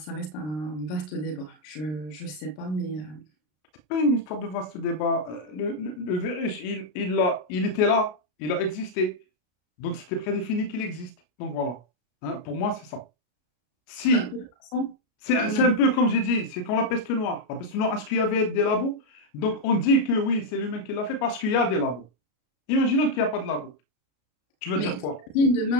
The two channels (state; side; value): late; right; 33 ms